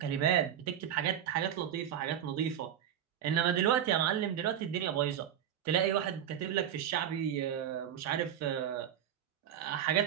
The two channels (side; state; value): left; quieter; 9.9 dB